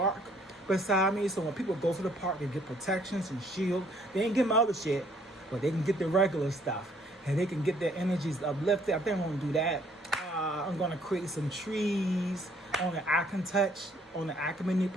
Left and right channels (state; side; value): normal; both; correlation 0.64